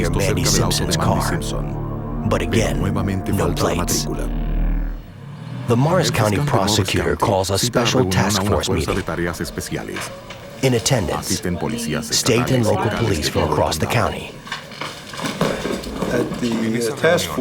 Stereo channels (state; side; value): identical; both; correlation 1.00